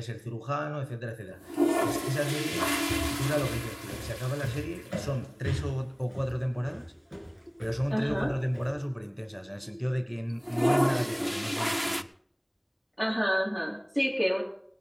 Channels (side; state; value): both; identical; correlation 1.00